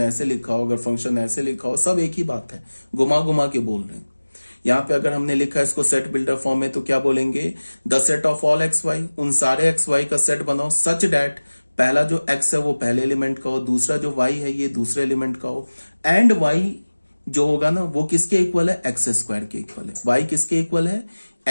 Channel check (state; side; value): inverted; both; correlation -1.00